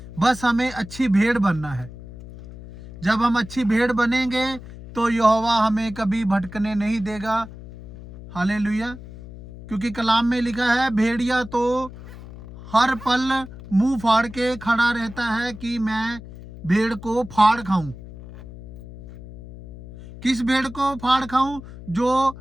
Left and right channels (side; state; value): left; noise; hum, 15 dB below the sound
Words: बस हमें अच्छी भेड़ बनना है। जब हम अच्छी भेड़ बनेंगे तो यहोवा हमें कभी भटकने नहीं देगा। हालेलुया। क्योंकि कलाम में लिखा है भेड़िया तो हर पल मुंह फाड़ के खड़ा रहता है कि मैं भेड़ को फाड़ खाऊं। किस भेड़ को फाड़ खाऊं? जो